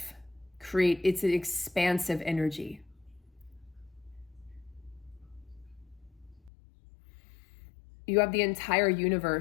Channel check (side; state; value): right; drops out; at 6.5 s